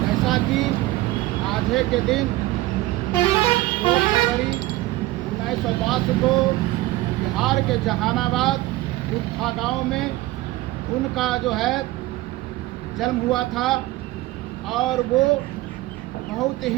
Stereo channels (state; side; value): quieter; left; 17.9 dB